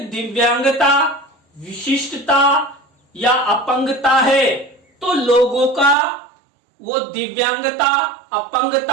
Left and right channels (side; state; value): left; drops out; at 6.0 s